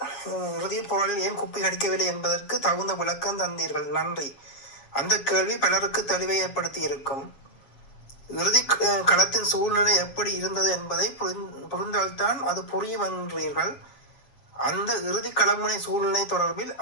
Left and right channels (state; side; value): late; right; 7.3 ms